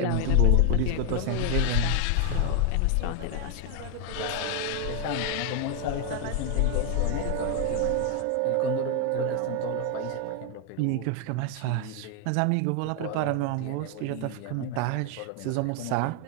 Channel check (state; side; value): different; both; correlation 0.00